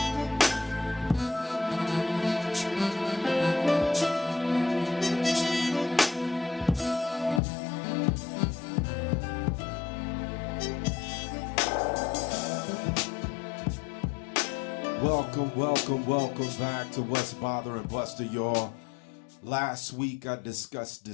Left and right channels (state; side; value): drops out; right; at 7.4 s